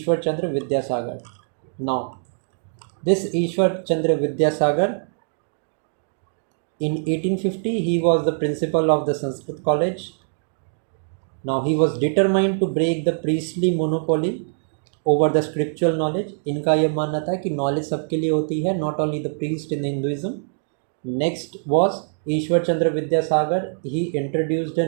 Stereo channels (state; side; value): silent; left; digital silence